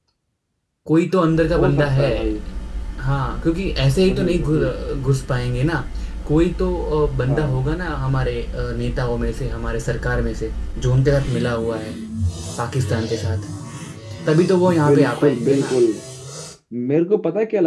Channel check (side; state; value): both; identical; correlation 1.00